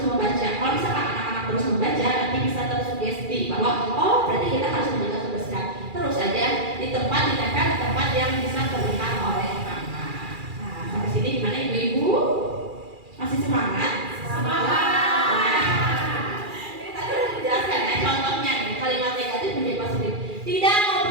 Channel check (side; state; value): left; late; 2.4 ms